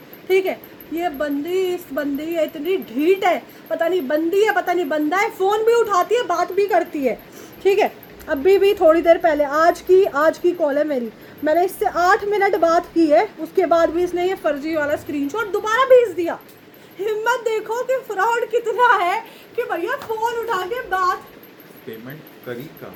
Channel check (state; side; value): identical; both; correlation 1.00